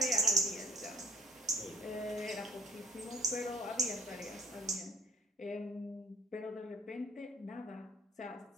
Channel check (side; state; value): both; normal; correlation 0.58